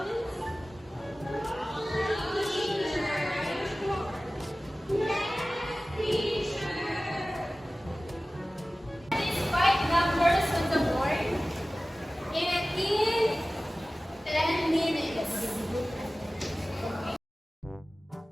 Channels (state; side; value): normal; both; correlation 0.97